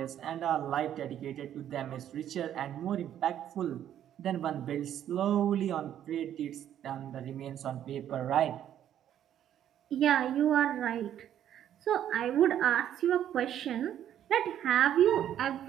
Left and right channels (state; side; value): quieter; left; 10.7 dB